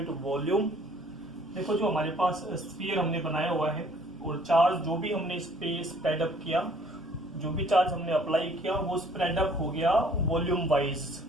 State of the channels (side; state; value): both; normal; correlation 0.58